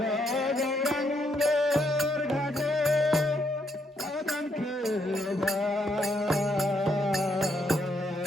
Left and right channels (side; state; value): both; normal; correlation 0.74